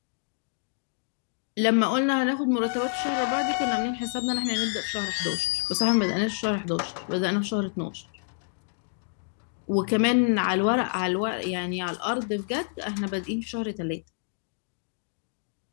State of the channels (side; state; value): right; silent; digital silence